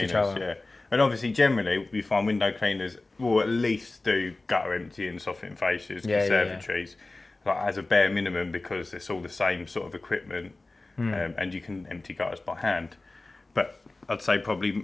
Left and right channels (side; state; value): right; quieter; 3.1 dB